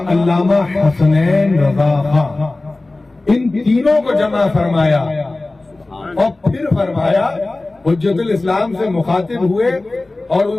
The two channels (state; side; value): quieter; right; 3.0 dB